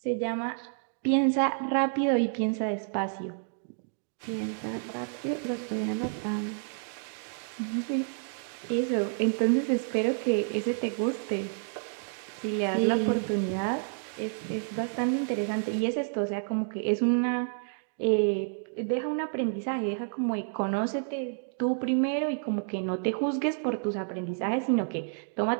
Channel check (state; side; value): silent; left; digital silence